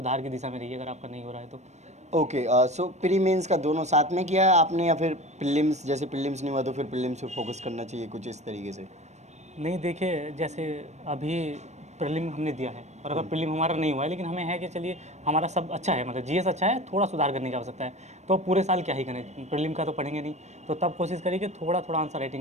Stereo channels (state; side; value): late; left; 0.33 ms